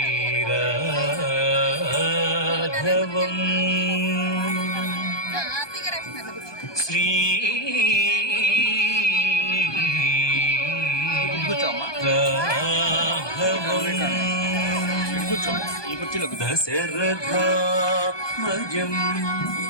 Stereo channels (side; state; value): right; late; 1.2 ms